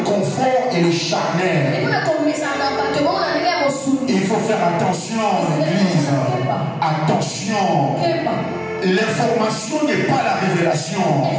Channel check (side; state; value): both; identical; correlation 1.00